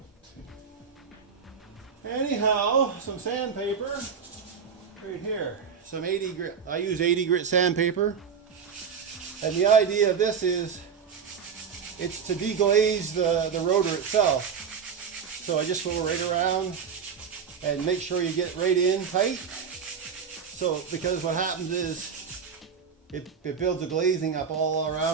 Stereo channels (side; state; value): left; quieter; 6.6 dB